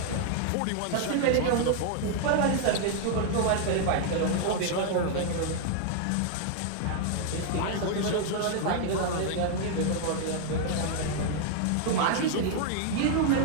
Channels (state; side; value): different; both; correlation 0.00